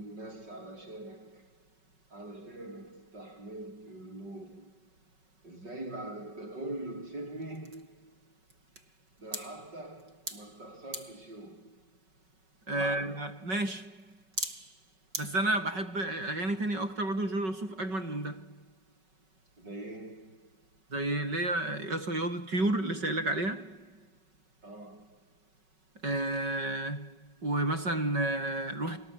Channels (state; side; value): late; left; 5.3 ms